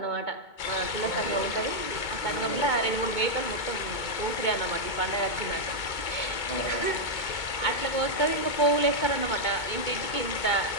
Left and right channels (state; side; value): late; right; 2.2 ms